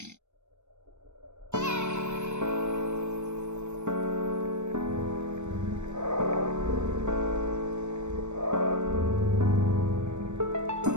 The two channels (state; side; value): late; left; 0.84 ms